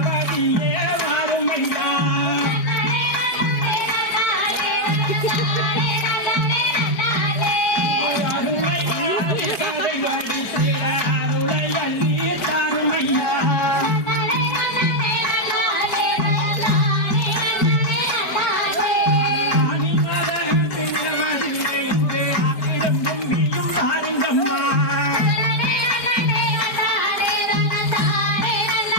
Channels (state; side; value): late; right; 4.8 ms